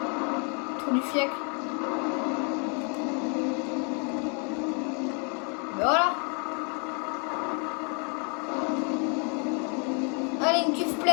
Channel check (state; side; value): quieter; right; 37.9 dB